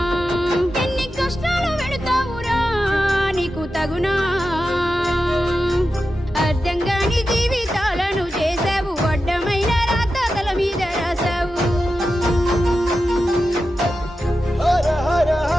ఎన్ని కష్టాలు పెడతావురా నీకు తగునా. అర్థం కాని జీవితాలను చేసావు, అడ్డమైన రాత తల మీద రాసావు. హర హర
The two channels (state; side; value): normal; both; correlation 0.91